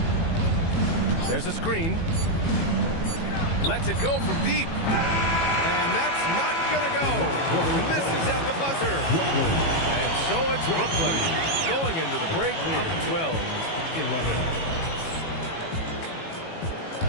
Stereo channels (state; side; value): late; right; 18 ms